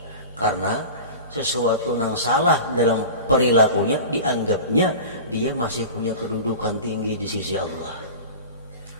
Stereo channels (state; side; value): inverted; both; correlation -0.34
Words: Karena sesuatu yang salah dalam perilakunya dianggapnya dia masih punya kedudukan tinggi di sisi Allah.